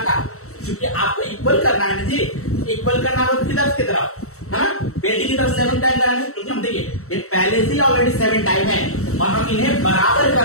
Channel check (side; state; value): right; late; 0.64 ms